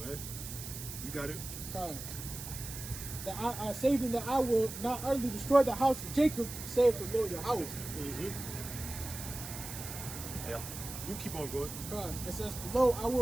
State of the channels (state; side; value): noise; right; hiss, 9 dB below the sound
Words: man. You got it? That I saving that I will not utterly destroy the house of Jacob, save the Lord Yahweh. Yeah. You keep on going. It says, lo, I